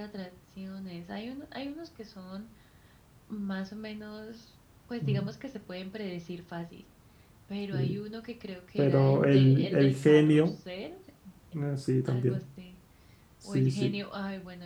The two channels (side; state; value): both; identical; correlation 1.00